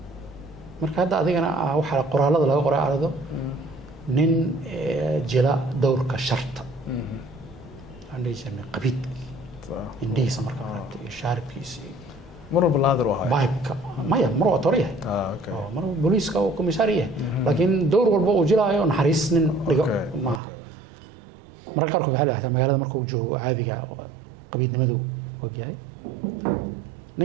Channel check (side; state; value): left; drops out; at 20.4 s